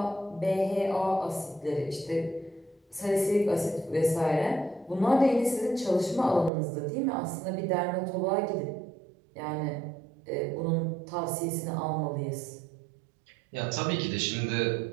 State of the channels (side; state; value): left; drops out; at 6.5 s